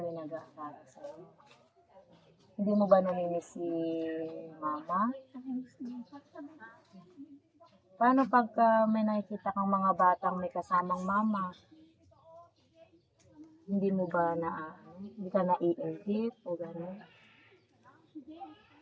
yung nag-aaral sa'yo. Hindi mo ba namimiss si mama? Paano pagka may nakikita kang mga batang may kasamang mama? Hindi mo ba hindi ka naiingit o gano'n?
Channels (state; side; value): identical; both; correlation 1.00